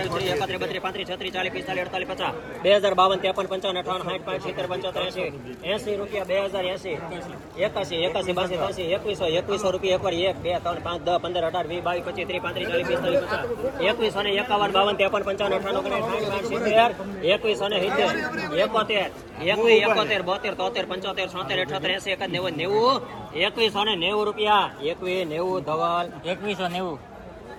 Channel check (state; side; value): identical; both; correlation 1.00